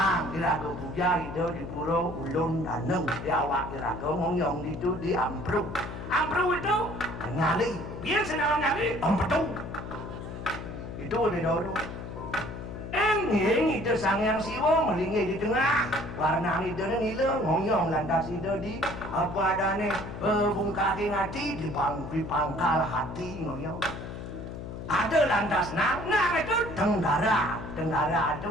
iraga puja itu di pura Ulun Daneng, di awak iraga ngomong itu di Ampru itu nyali, biasa dalam nyali, Ampetu, itu di Doro. Enging itu sangyang Siwo melingih di tengah warna itu nila ngoyong lantas itu di apa adane bungkaki ngati di pangkal hati ngoyong ada lantas nang itu tenggara itu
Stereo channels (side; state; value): left; noise; hum, 9 dB below the sound